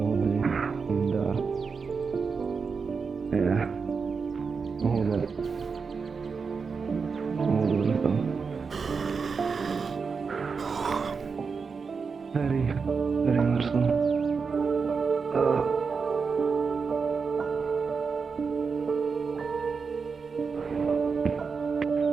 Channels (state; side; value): quieter; left; 5.3 dB